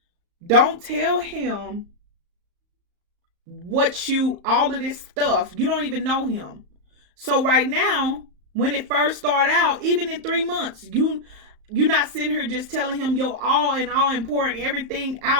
don't tell him all of this stuff. You don't even know him. So right now, when it first started out, even in 3 months, you're not sitting here just telling him your all and all important everything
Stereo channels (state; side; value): late; left; 35 ms